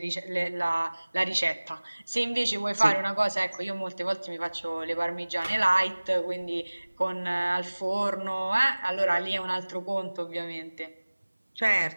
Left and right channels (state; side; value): inverted; both; correlation -1.00